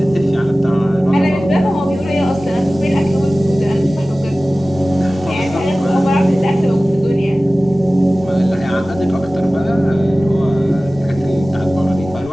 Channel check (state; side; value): normal; both; correlation 0.97